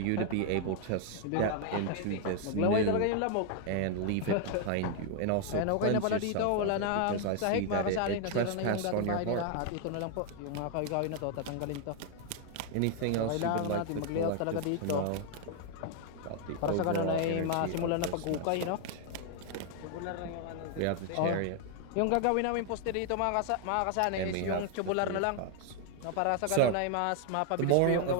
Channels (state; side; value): different; both; correlation 0.00